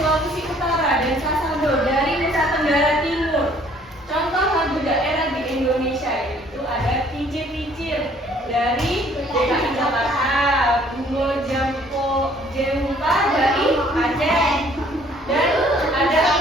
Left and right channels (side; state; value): both; normal; correlation 0.59